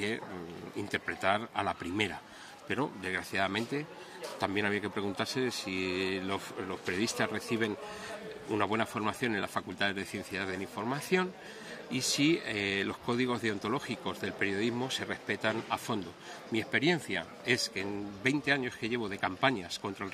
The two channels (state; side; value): identical; both; correlation 1.00